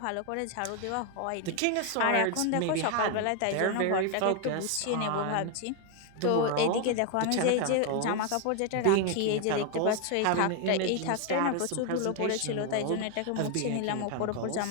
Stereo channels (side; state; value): both; different; correlation 0.01